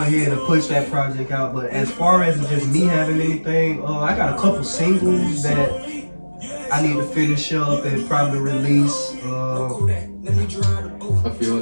ahead and push that project out. But as far as just me having anything, I got a couple singles that I need to finish up and probably release. I feel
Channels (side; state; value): both; inverted; correlation -1.00